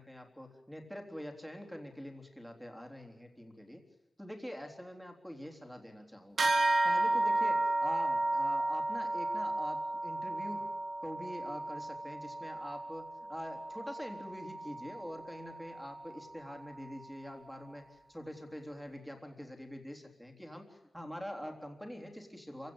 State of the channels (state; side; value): normal; both; correlation 0.98